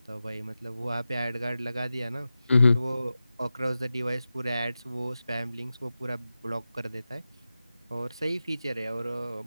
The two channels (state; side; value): inverted; both; correlation -0.93